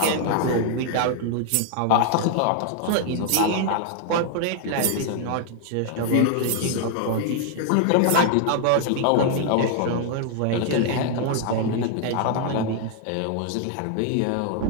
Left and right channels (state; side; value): different; both; correlation 0.00